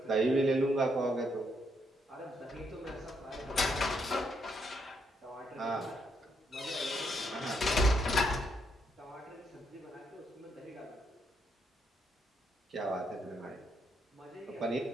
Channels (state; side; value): normal; both; correlation 0.76